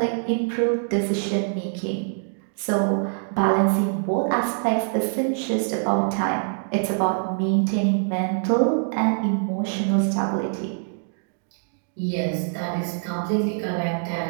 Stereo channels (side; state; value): left; silent; digital silence